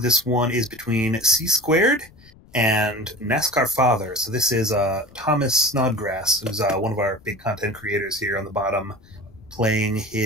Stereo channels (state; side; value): noise; left; rumble, 26 dB below the sound